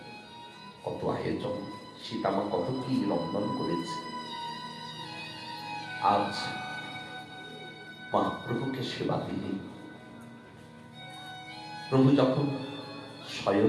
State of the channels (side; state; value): both; identical; correlation 1.00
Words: কত আয়োজন, সীতামা কত কি রন্ধন করেছে। আজ মহাপ্রভুকে সেবা দিলেন। প্রভু যখন